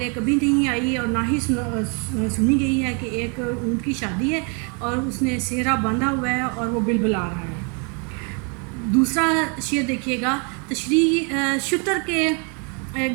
کبھی نہیں آئی اور نہ ہی سنی گئی ہے کہ ایک اونٹ کی شادی ہے اور اس نے صحرا باندھا ہوا ہے اور وہ بلبلا رہا ہے۔ دوسرا شعر دیکھیے گا: تشریح شتر کے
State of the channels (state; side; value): quieter; left; 36.3 dB